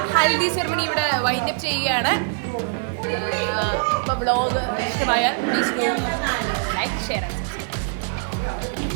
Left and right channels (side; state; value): left; silent; 63 dB below the other